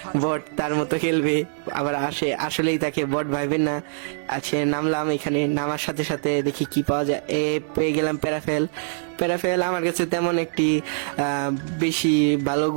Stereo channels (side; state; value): left; silent; digital silence